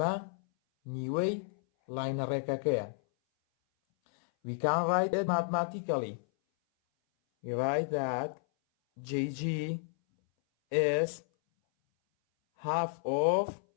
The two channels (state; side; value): silent; right; 57 dB below the other